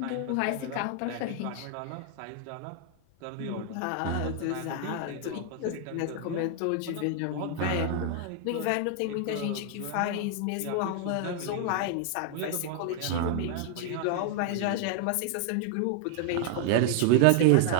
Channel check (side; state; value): both; different; correlation 0.00